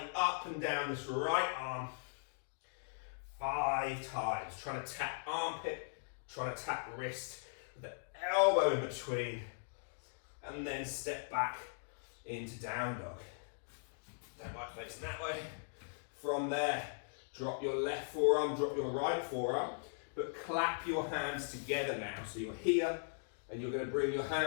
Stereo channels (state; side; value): silent; right; digital silence